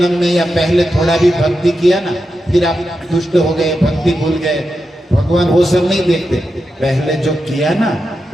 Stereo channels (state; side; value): normal; both; correlation 0.88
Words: में या पहले थोड़ा भी भक्ति किया ना, फिर आप दुष्ट हो गए, भक्ति भूल गए, भगवान वो सब नहीं देखते। पहले जो किया ना